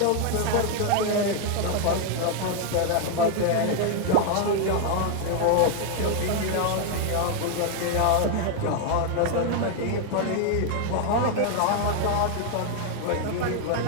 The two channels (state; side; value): different; both; correlation 0.00